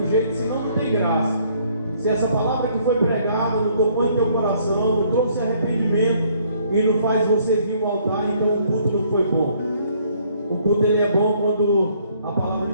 jeito, senão não tem graça. Se essa palavra que foi pregada não tocou em teu coração, não trouxe arrependimento e não faz você vir ao altar, então o culto não foi bom. O culto ele é bom quando a palavra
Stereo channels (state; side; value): inverted; both; correlation -0.63